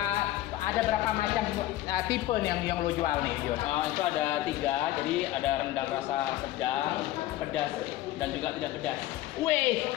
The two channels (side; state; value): right; quieter; 15.1 dB